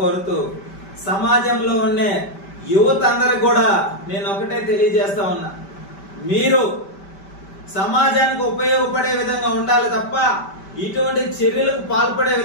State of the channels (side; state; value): right; late; 5.1 ms